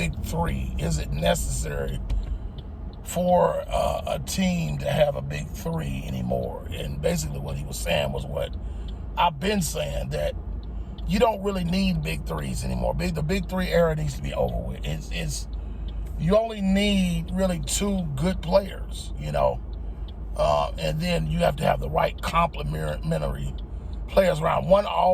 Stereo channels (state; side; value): identical; both; correlation 1.00